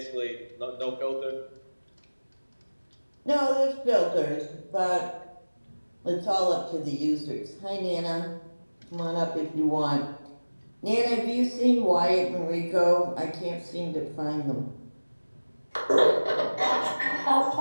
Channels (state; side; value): inverted; both; correlation -1.00